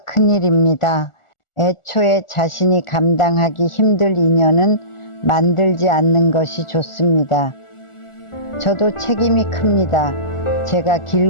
큰일입니다. 애초에 자신이 감당하기 힘들 인연은 만들지 않는 것이 좋습니다. 저도 책임이 큽니다. 제가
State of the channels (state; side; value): late; right; 1.4 ms